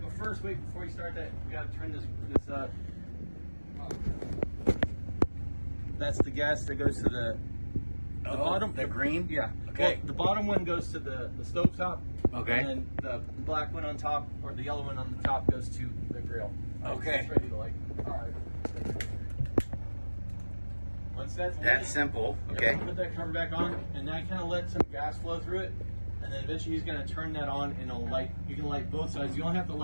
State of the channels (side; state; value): both; inverted; correlation -1.00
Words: but first, wait, before you start that, we got to turn this that's the gas that goes to the bottom. The green? Yeah. Okay. Well, the bottom one goes to the stove top. Okay. And then the black one on top, or the yellow one on the top, goes to the grill. Okay. It's ready to light. All right. Once that's lit, simple. yeah, Okay. put that cover back on, and then kind of let some gas flow through it, and then eventually he's going to turn that on, and it'll light. You can light both sides. You only have to